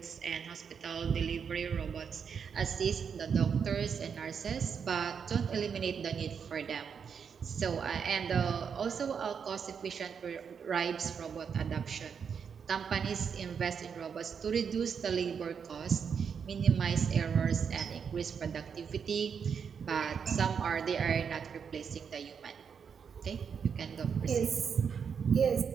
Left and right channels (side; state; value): left; quieter; 6.8 dB